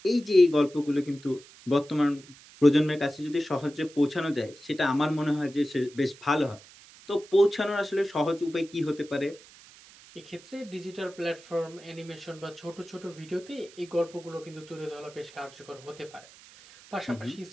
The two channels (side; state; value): right; noise; hiss, 22 dB below the sound